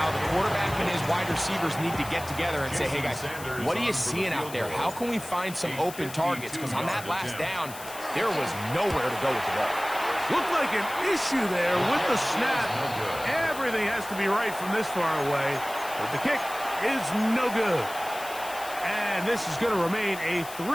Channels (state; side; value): noise; left; hiss, 14 dB below the sound